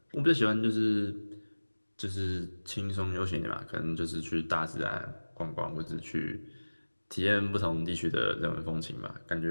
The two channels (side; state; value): both; inverted; correlation -1.00